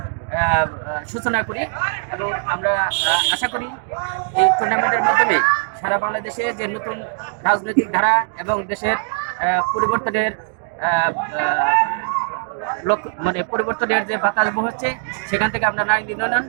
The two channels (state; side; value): silent; left; 59 dB below the other